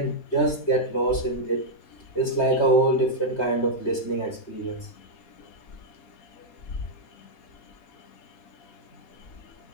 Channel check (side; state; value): right; late; 3.2 ms